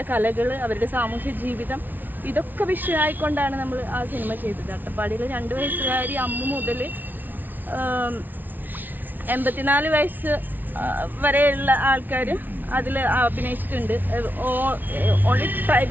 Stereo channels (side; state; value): left; late; 0.086 ms